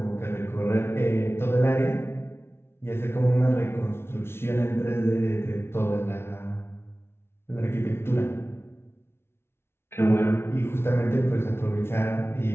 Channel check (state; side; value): late; right; 0.12 ms